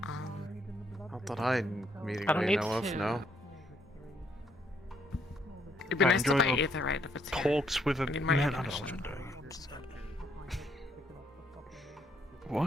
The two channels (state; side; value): normal; both; correlation 0.71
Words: Not that I immediately need know of, to. no. It'd be I nice to enjoy buy the Aetherite if it's here. Talks with a I need more man. information.